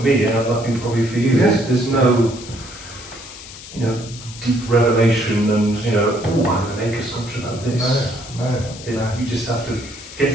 me, nothing probably for you, there's no, deep revelation and, oh, I'm going to make a sculpture about this. No. You just have to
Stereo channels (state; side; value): noise; left; hiss, 15 dB below the sound